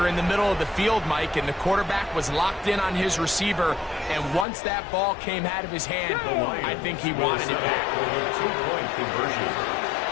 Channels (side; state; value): right; drops out; at 4.5 s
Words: in the middle of the field, Mike, and the quarterback was locked in on his receiver, and once that ball came out of his hand, I think he wanted it back. 2-point conversion.